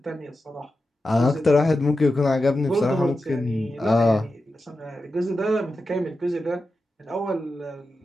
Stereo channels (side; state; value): both; normal; correlation 0.91